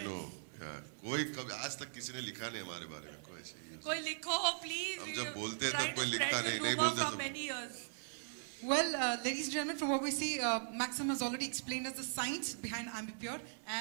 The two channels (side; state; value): left; silent; 52 dB below the other